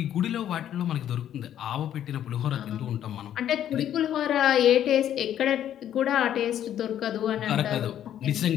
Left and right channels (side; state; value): right; quieter; 10.7 dB